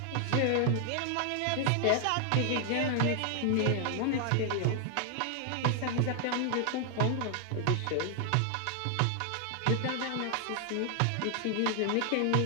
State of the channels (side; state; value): both; different; correlation 0.00